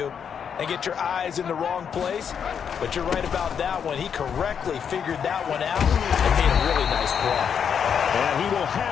and get your eyes in the wrong place. But you're right about that one. He correctly figured that one out and made a really nice play. And he will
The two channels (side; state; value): right; quieter; 7.5 dB